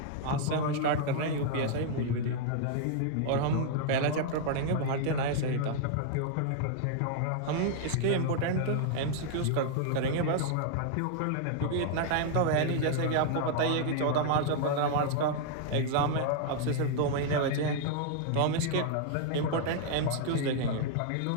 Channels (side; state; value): both; different; correlation 0.00